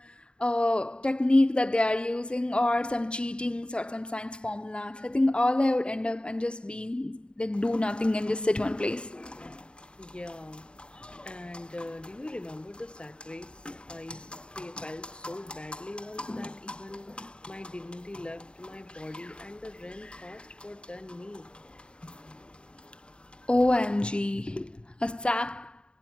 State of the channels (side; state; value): right; late; 0.052 ms